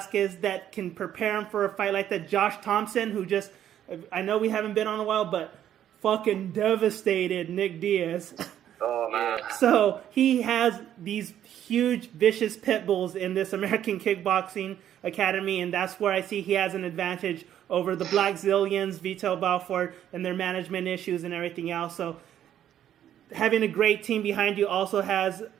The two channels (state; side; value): quieter; left; 10.7 dB